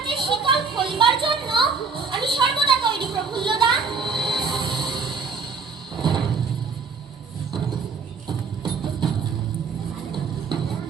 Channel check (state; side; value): quieter; left; 5.1 dB